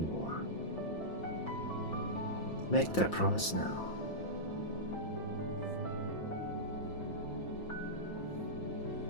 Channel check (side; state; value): right; late; 5.8 ms